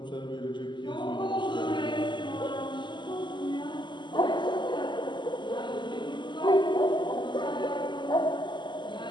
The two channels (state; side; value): late; right; 0.22 ms